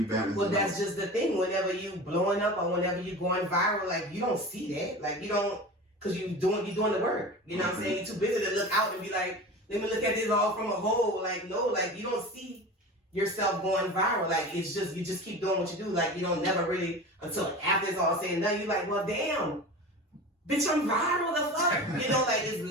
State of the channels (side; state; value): both; normal; correlation 0.33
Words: balance. Well, it that's out. just the thing. Whenever you blowing up or whenever you going viral, like you don't see that. Like you don't, cause you're doing the work. You know what I'm saying? You're too busy to look out and be like, let me look at this all from a whole. Like no, like you don't see yourself going viral. Like it's just you just keep doing what you do. Like you don't never really until after it's all said and done. You like, well, damn, bitch, I'm viral. The fuck, you know, like it's